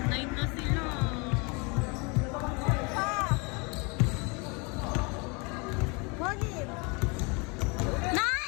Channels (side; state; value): right; quieter; 30.7 dB